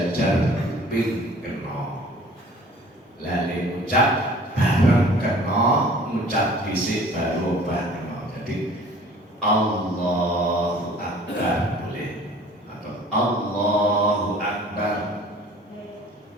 kuping kena. Lali ngucap bareng kena, ngucap dhisik baru obah kena. Jadi Allahu Akbar boleh, atau Allahu Akbar,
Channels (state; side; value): normal; both; correlation 0.49